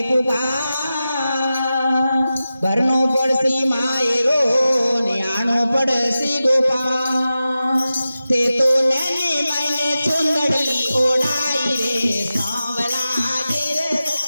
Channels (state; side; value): inverted; both; correlation -0.93